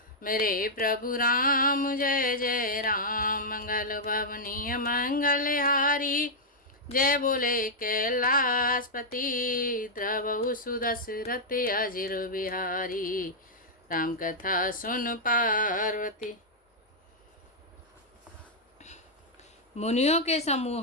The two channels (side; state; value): both; normal; correlation -0.06